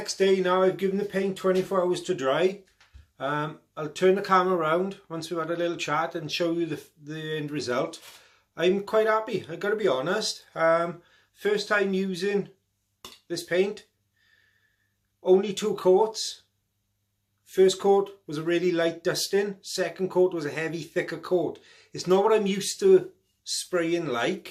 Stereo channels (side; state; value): both; identical; correlation 1.00